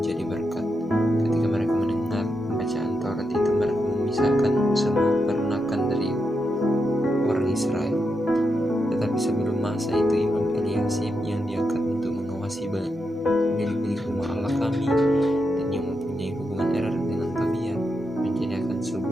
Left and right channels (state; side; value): normal; both; correlation 0.85